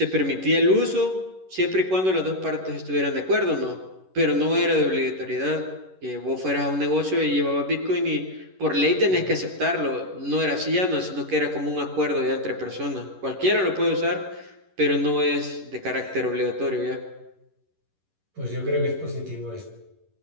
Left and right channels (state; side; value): late; left; 11 ms